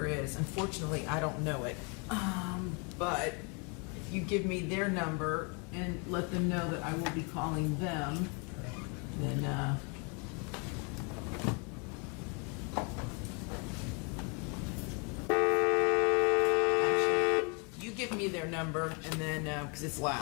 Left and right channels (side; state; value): right; quieter; 34.2 dB